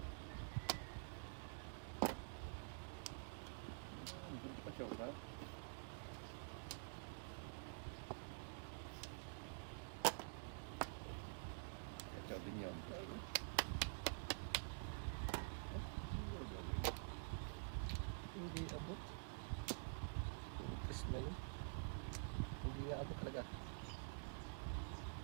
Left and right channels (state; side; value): silent; left; digital silence